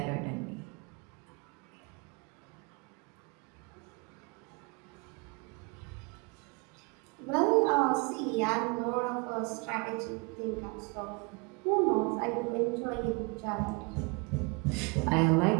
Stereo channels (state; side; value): quieter; left; 30.0 dB